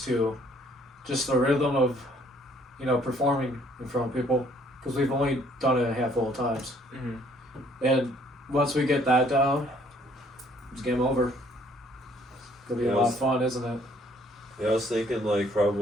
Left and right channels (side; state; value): both; normal; correlation 0.62